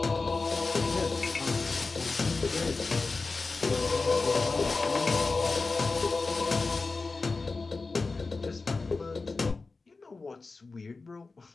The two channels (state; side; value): quieter; right; 3.9 dB